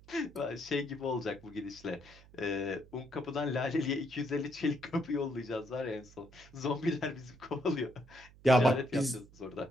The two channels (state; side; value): noise; right; hum, 23 dB below the sound